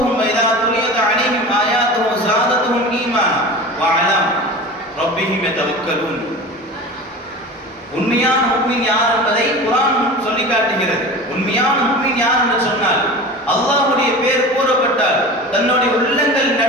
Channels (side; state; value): both; normal; correlation 0.33